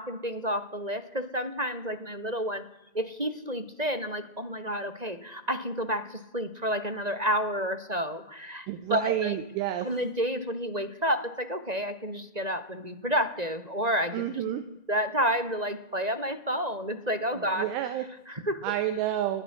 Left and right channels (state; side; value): late; left; 1.9 ms